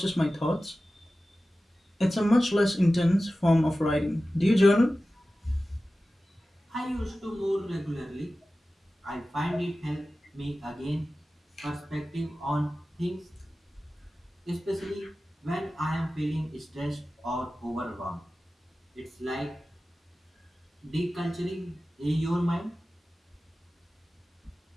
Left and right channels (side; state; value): both; normal; correlation 0.95